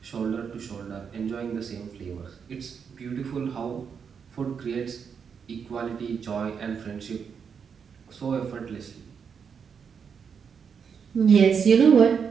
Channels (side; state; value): left; quieter; 6.6 dB